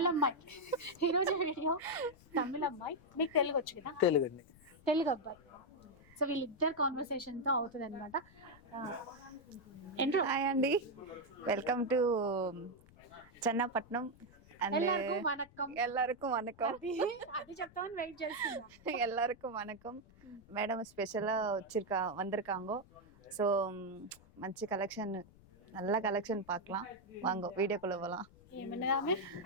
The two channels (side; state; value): left; noise; rumble, 25 dB below the sound